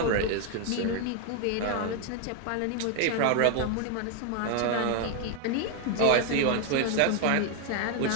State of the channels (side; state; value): both; different; correlation 0.01